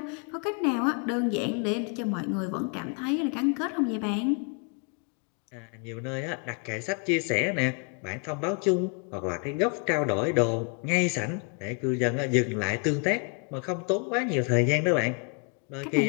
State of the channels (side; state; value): right; quieter; 37.3 dB